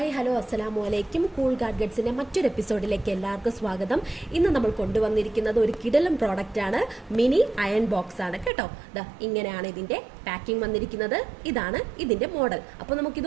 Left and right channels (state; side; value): drops out; left; at 8.5 s